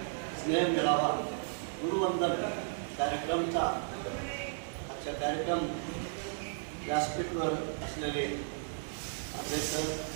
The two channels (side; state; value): left; silent; digital silence